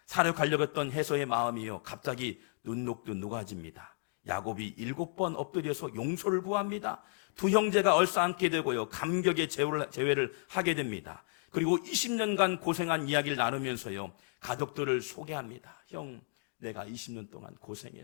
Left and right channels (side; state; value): right; silent; 56 dB below the other